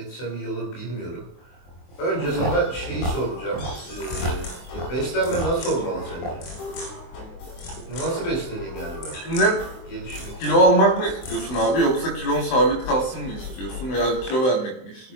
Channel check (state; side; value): late; right; 23 ms